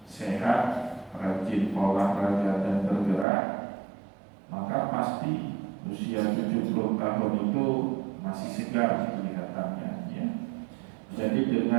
sehat, rajin olahraga dan bergerak, maka pasti usia 70 tahun itu masih segar kelihatannya ya. Jadi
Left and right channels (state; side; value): drops out; left; at 3.2 s